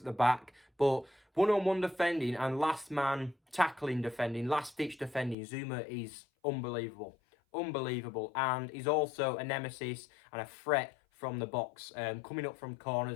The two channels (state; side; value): drops out; right; at 5.4 s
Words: the back, but one-on-one defending and last man tackling defending, last-ditch defending, Zouma is unbelievable, and he's also a nemesis and a threat from the box, coming up from